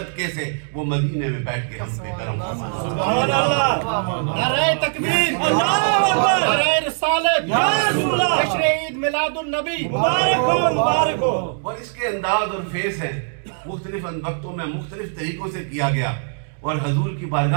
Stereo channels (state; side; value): silent; left; 62 dB below the other